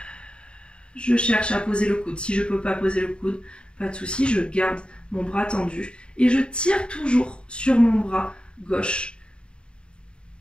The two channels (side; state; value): right; late; 0.053 ms